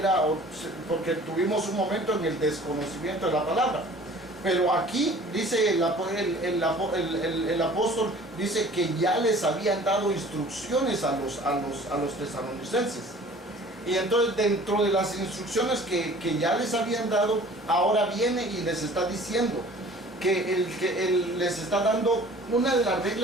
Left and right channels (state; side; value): normal; both; correlation 0.48